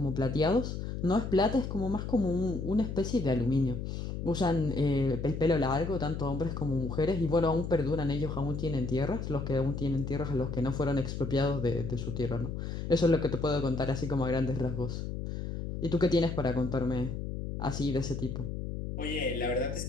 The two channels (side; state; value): left; noise; hum, 5 dB below the sound